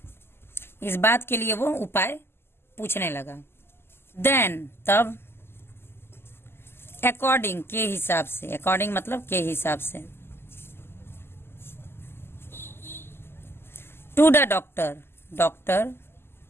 बात के लिए वो उपाय पूछने लगा। देन तब, अकॉर्डिंग के हिसाब से, अकॉर्डिंग मतलब के हिसाब से, टू द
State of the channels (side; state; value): right; late; 0.12 ms